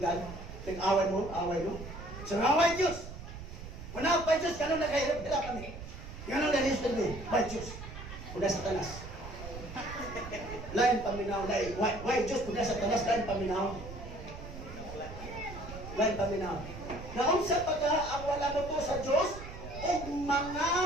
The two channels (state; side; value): noise; right; rumble, 11 dB below the sound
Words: kung away mo. So, away Diyos! Wala pa Diyos, gano'n na kahirap kami. Gano'n na listed mo, by Diyos. Kuda sa tanas. Lain paminaw, lain. Why Diyos, kuda sa tanas, lain paminaw. Lain paminaw. Naunsa pa ka ang wala mo to sa Diyos, o mga